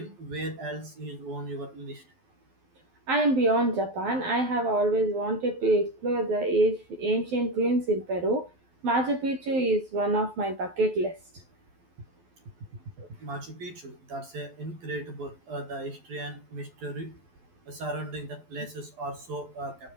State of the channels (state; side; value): late; left; 12 ms